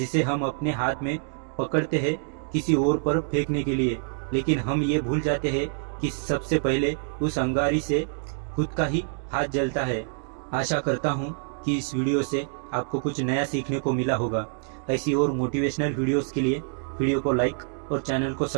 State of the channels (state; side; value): silent; left; 61 dB below the other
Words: हम अपने हाथ में पकड़ते हैं किसी और पर फेंकने के लिए, लेकिन हम ये भूल जाते हैं कि सबसे पहले उस अंगारी से खुद का ही हाथ जलता है। आशा करता हूँ कि इस वीडियो से आपको कुछ नया सीखने को मिला होगा। ऐसी और मोटिवेशनल वीडियोस के लिए वीडियो को लाइक और चैनल को